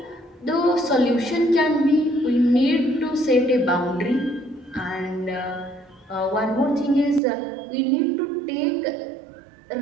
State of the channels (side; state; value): left; drops out; at 7.2 s